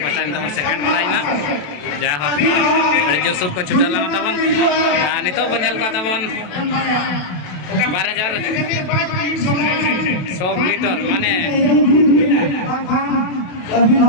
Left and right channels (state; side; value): late; right; 27 ms